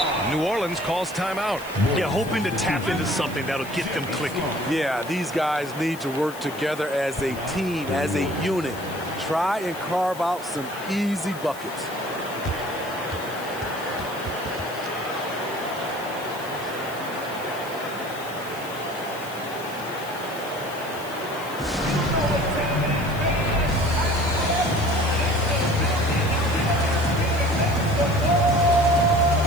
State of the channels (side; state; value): left; noise; hiss, 17 dB below the sound